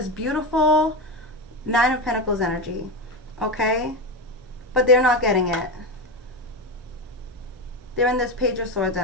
beautiful Nine of Pentacles energy, okay? But they're not getting it. They're in this Page of Swords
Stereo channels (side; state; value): both; normal; correlation 0.16